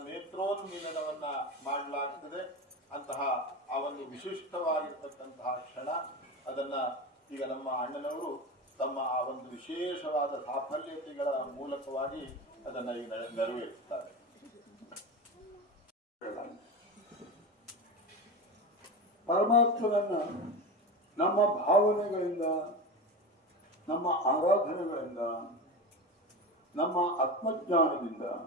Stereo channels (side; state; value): both; normal; correlation 0.24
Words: ನೇತ್ರೋನ್ಮೀಲನವನ್ನ ಮಾಡಲಾಗ್ತದೆ. ಅಂತಹ ಆ ಒಂದು ವಿಶಿಷ್ಟವಾಗಿರ್ತಕ್ಕಂತಹ ಕ್ಷಣ ಅದನ್ನ ಈಗ ನಮ್ಮ ಅಣ್ಣನವರು ತಮ್ಮ ಆ ಒಂದು ವಿಶೇಷವಾದ ಸಾಫಲ್ಯತೆಗಳ ಮೂಲಕವಾಗಿ ಅದನ್ನ ಈಗ ನೆರವೇರಿಸ್ತಾರೆ. ಪರಮಾತ್ಮನನ್ನ ನಮ್ಮ ಭಾವನೆಗಳಿಂದ, ನಮ್ಮ ಆರಾಧನೆಗಳಿಂದ, ನಮ್ಮ ಆತ್ಮಜ್ಞಾನದಿಂದ,